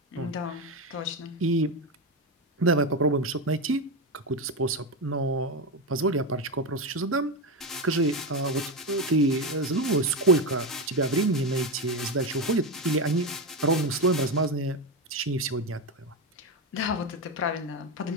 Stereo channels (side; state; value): both; normal; correlation 0.14